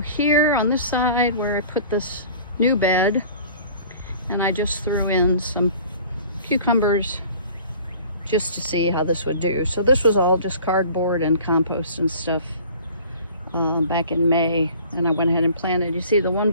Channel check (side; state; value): both; inverted; correlation -0.47